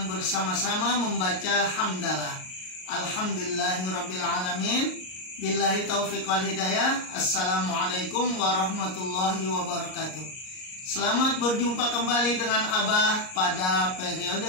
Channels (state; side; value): late; right; 38 ms